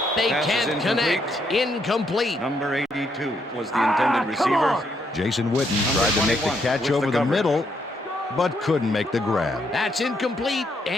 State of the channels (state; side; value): normal; both; correlation 0.75